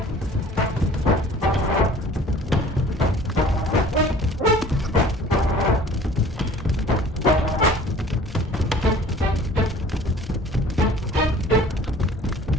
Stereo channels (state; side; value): normal; both; correlation 0.49